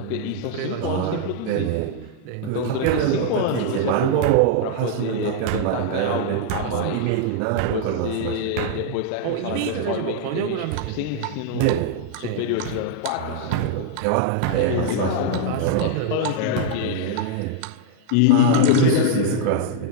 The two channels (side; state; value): both; different; correlation 0.00